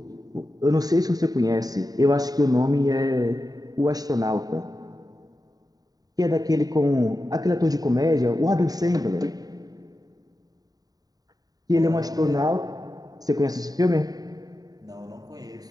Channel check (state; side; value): late; left; 0.18 ms